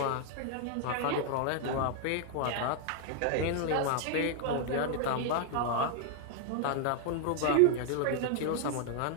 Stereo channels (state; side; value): different; both; correlation 0.00